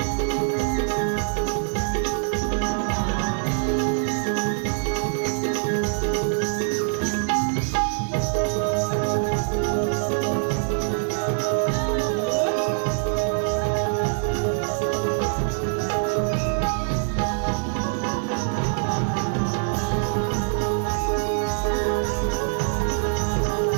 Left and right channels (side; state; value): left; silent; 63 dB below the other